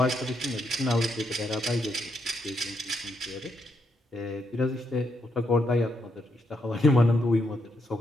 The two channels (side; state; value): both; normal; correlation 0.79